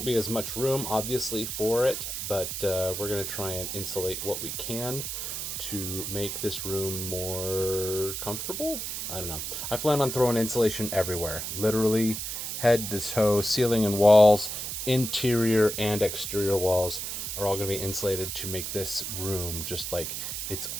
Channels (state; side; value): noise; right; hiss, 4 dB below the sound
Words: be as much room, obviously, for it, but we're going to try and insulate what we can to make this room more comfortable. I don't know. I plan on throwing insulation everywhere, literally head to toe, ceiling and walls, interior and exterior walls are all going to be insulated to make this room just like its